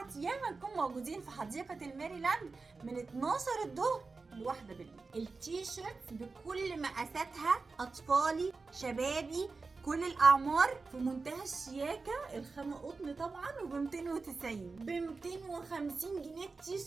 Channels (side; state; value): left; quieter; 4.1 dB